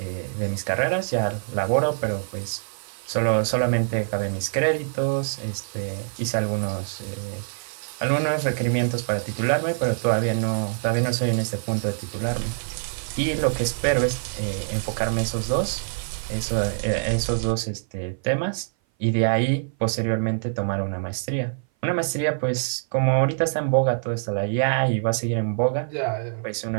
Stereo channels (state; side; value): silent; left; 57 dB below the other